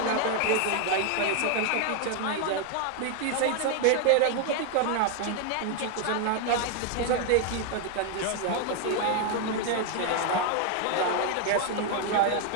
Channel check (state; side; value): different; both; correlation 0.00